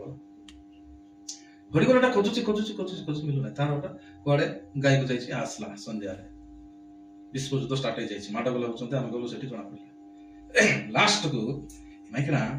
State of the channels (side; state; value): both; identical; correlation 1.00